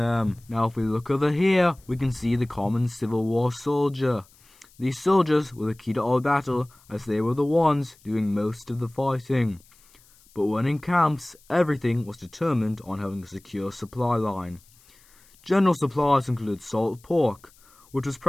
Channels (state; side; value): noise; left; hiss, 29 dB below the sound